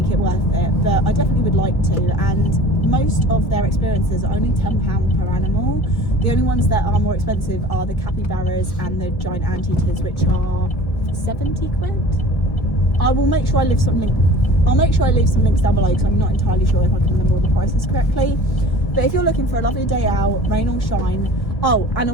it worth it, but I definitely would like to. And most of their experiences are only £10 per animal. The only ones that are more expensive are the capybaras and the giant anteaters, which are 70 quid. I will make sure I leave some links down below, because I'm not entirely sure if I can remember all the prices correctly. But if you're looking for a lovely day out, rain or shine, oh, and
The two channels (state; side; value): late; right; 1.5 ms